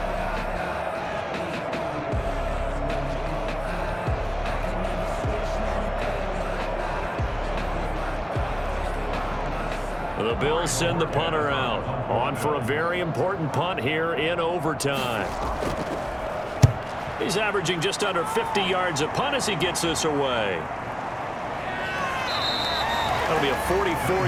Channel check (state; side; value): identical; both; correlation 1.00